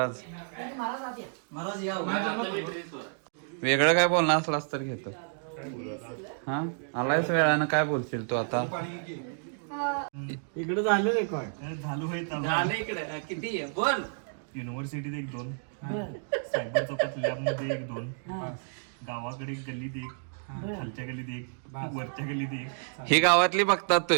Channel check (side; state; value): left; silent; digital silence